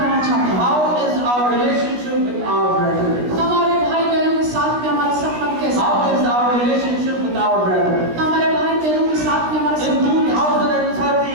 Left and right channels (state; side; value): late; left; 16 ms